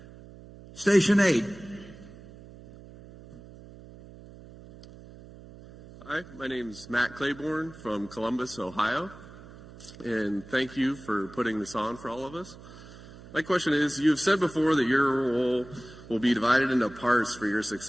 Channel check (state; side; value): noise; right; hum, 18 dB below the sound